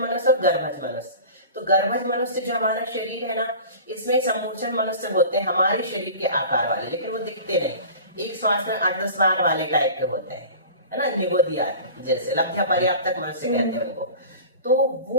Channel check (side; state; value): both; inverted; correlation -0.38